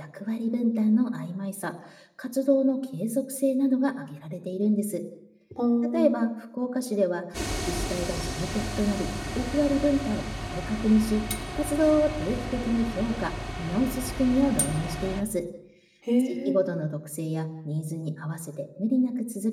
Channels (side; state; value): both; identical; correlation 1.00